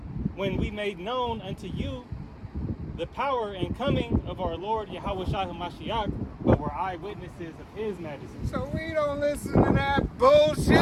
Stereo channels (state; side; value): identical; both; correlation 1.00